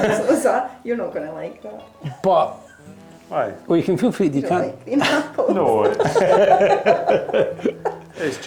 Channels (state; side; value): identical; both; correlation 1.00